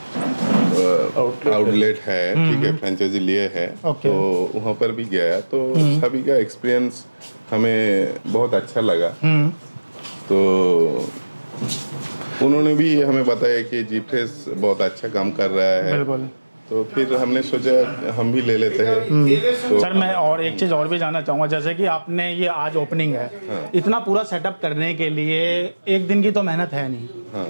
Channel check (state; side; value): inverted; both; correlation -1.00